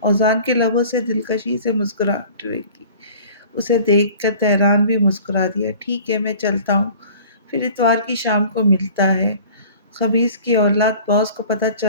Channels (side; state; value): both; inverted; correlation -0.46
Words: کے لبوں سے دلکشی سے مسکراہٹ رہی۔ اسے دیکھ کر تہران بھی مسکرا دیا۔ ٹھیک ہے، میں چلتا ہوں، پھر اتوار کی شام کو ملتا ہے۔ خبیث کی اولاد، باس کو پتہ